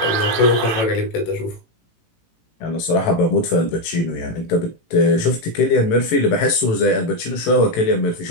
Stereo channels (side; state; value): right; late; 18 ms